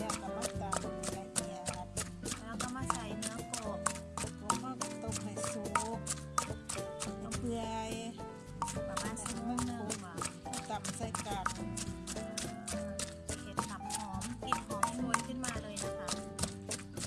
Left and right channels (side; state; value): both; identical; correlation 1.00